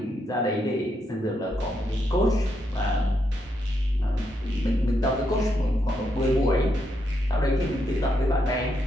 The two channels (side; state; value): both; normal; correlation 0.79